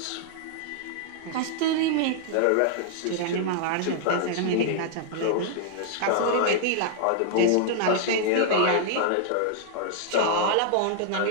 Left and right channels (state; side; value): different; both; correlation -0.01